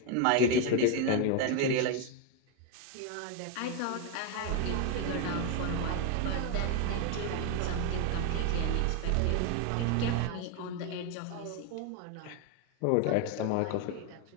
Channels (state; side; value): different; both; correlation 0.01